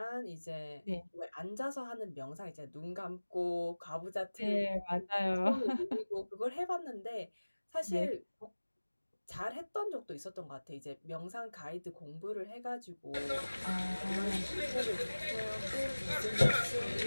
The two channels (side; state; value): both; inverted; correlation -1.00